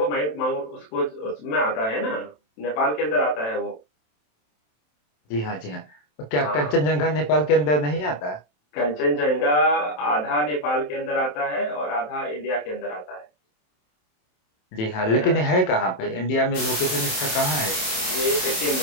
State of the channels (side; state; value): right; late; 27 ms